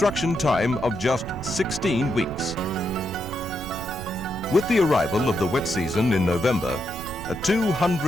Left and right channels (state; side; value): noise; right; rumble, 12 dB below the sound